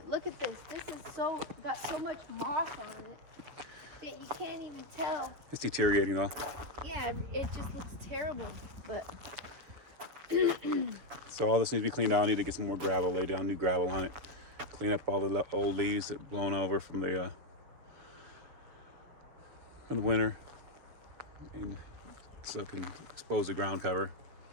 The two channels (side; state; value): left; late; 7.3 ms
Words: look at this. This is got so much moss on it that you can't even tell. It's deteriorating though. Yeah, it just looks terrible, but. So all this needs to be cleaned out. I need to get some more gravel, lay down new gravel on it. Clean up all the old leaves that blown over from the winter. And so it can expose the ground cover.